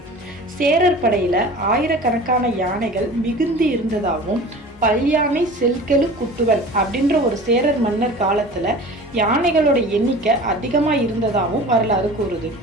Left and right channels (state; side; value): normal; both; correlation 0.40